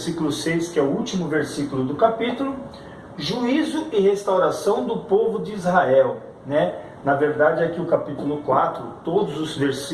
6, que é o último versículo do capítulo, juízo e restauração do povo de Israel, né? Na verdade, aqui o capítulo 4, todos os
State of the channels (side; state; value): both; identical; correlation 1.00